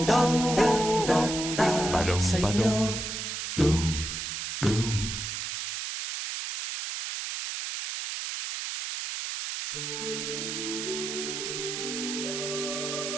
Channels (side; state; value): right; noise; hiss, 4 dB below the sound